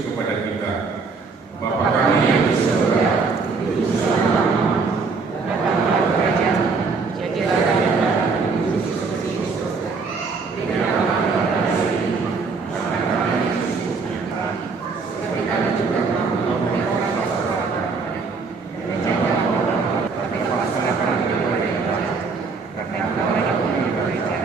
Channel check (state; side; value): quieter; left; 4.6 dB